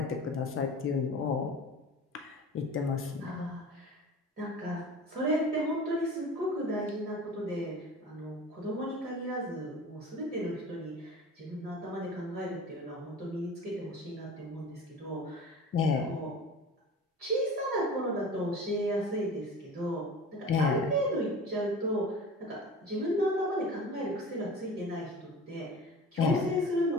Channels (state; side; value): normal; both; correlation 0.38